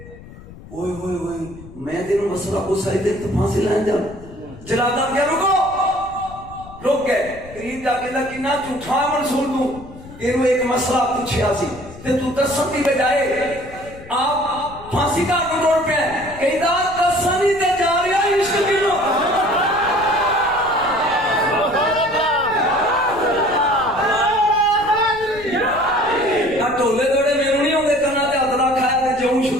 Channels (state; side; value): noise; left; rumble, 18 dB below the sound